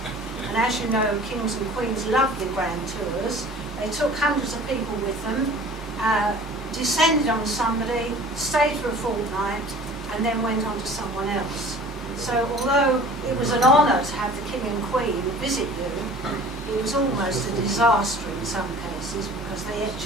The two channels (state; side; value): normal; both; correlation 0.45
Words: And as you know, kings and queens love their grand tours. They took hundreds of people with them, descended on somebody, stayed for a fortnight, and then went on to someone else. So although it was an honour to have the king and queen visit you, it was almost a disaster in some cases because they